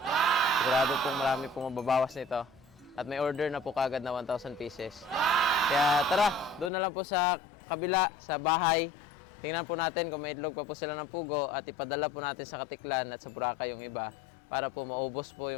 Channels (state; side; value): drops out; right; at 6.7 s